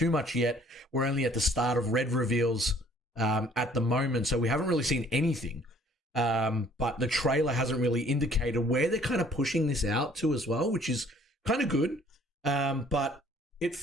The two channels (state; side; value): normal; both; correlation 0.58